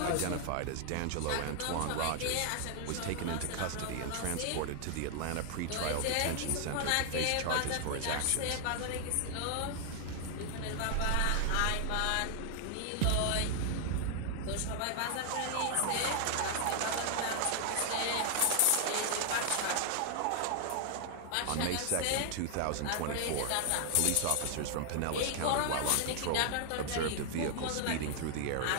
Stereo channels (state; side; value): different; both; correlation 0.00